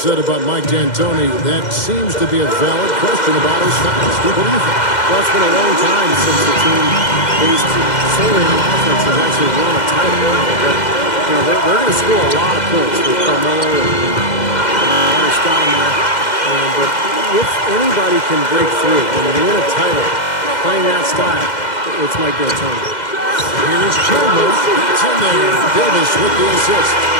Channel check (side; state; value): right; late; 2.1 ms